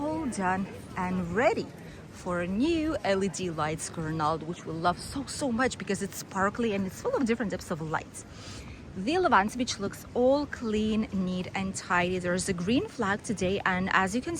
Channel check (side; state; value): both; identical; correlation 1.00